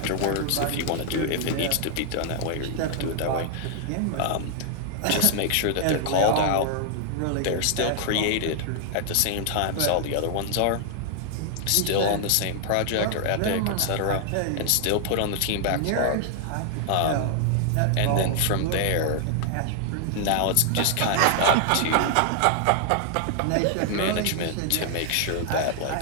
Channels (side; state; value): both; different; correlation 0.00